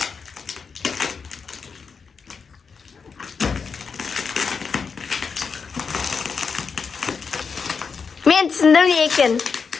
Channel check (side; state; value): right; quieter; 5.5 dB